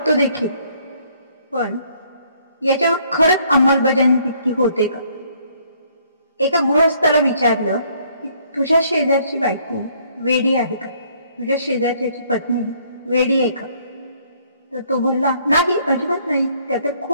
देखील, पण याच्यावर खरंच अंमलबजावणी तितकी होते का? एका गृहस्थाला विचारलं की तुझ्या शेजारची बायको वेडी आहे का, तुझ्या शेजारची पत्नी वेडी आहे का? तर तो बोलला नाही, अजिबात नाही, त्या तर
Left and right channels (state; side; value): inverted; both; correlation -0.64